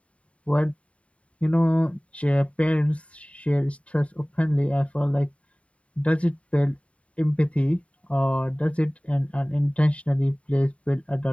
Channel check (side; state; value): right; late; 0.064 ms